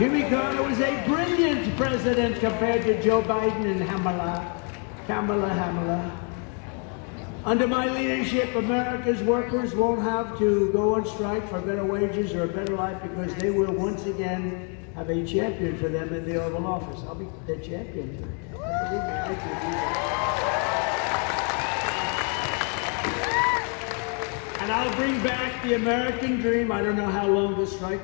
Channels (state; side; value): quieter; right; 39.7 dB